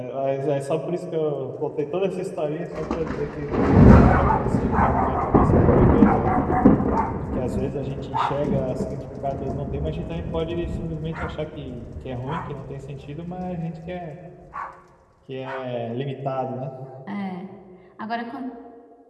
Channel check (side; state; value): both; identical; correlation 1.00